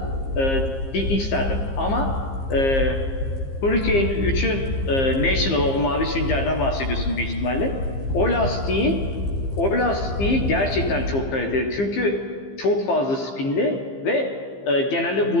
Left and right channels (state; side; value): late; right; 15 ms